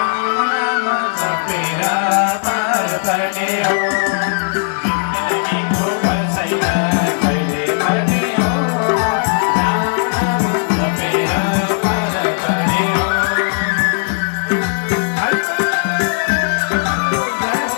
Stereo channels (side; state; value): right; silent; digital silence